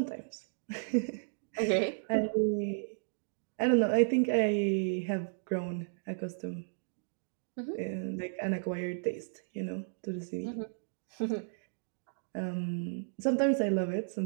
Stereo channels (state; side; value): silent; left; digital silence